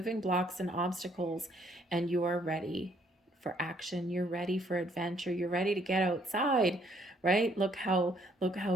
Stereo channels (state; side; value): normal; both; correlation 0.66